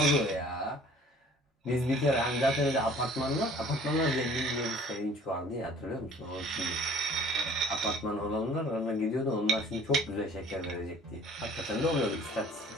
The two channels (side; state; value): both; normal; correlation 0.51